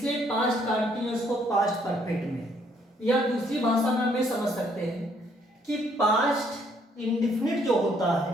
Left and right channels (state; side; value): normal; both; correlation 0.67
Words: पास्ट कॉन्टिन्यूअस को पास्ट परफेक्ट में, या दूसरी भाषा में हमें समझ सकते हैं कि पास्ट इंडेफिनिट जो होता है